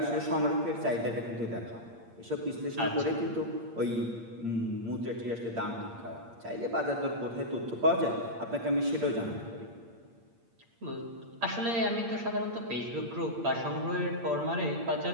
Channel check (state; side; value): late; left; 8.7 ms